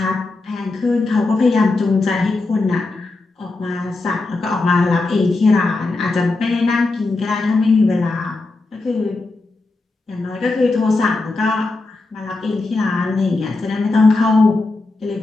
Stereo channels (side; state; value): right; quieter; 3.3 dB